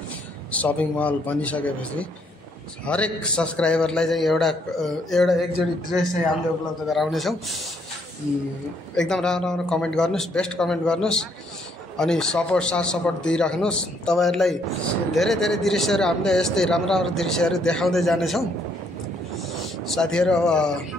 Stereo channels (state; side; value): normal; both; correlation 0.69